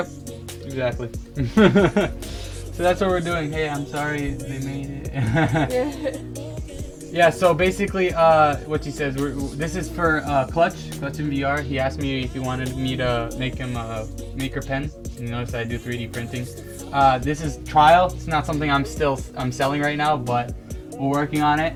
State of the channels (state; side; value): identical; both; correlation 1.00